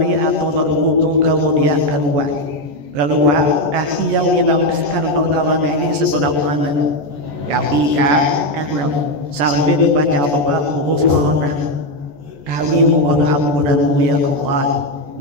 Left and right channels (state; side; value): late; left; 14 ms